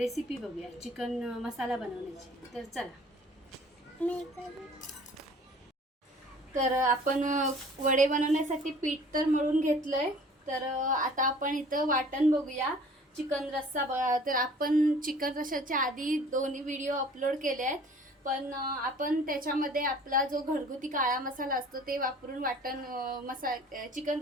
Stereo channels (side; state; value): both; normal; correlation 0.50